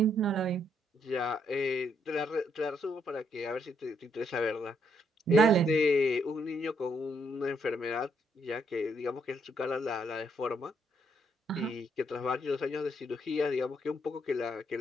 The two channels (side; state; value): both; normal; correlation 0.73